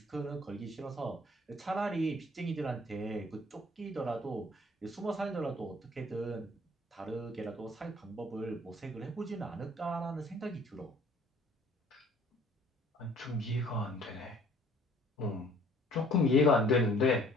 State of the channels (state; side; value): normal; both; correlation 0.56